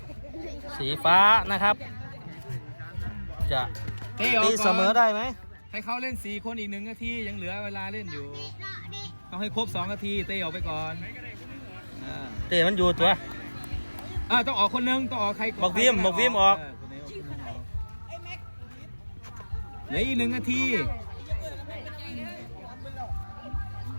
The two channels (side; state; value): both; inverted; correlation -1.00